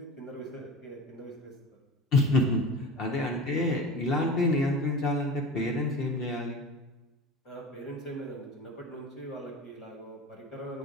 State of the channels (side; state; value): both; normal; correlation 0.33